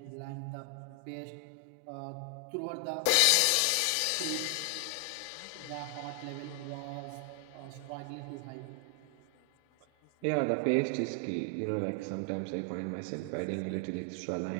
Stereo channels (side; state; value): both; different; correlation 0.00